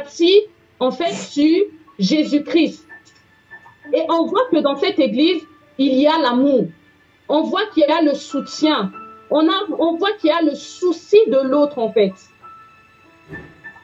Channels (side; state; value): both; identical; correlation 1.00